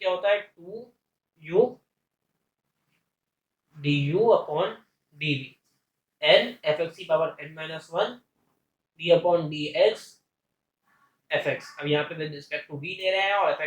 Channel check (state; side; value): identical; both; correlation 1.00